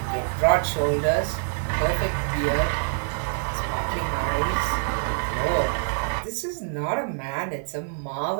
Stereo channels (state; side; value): silent; left; 61 dB below the other